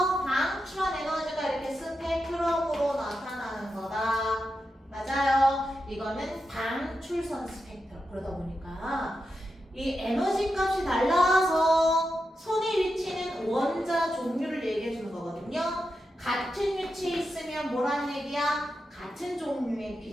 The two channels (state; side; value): normal; both; correlation 0.88